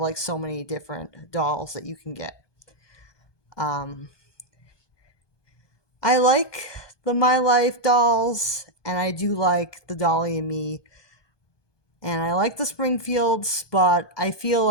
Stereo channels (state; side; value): late; right; 1.2 ms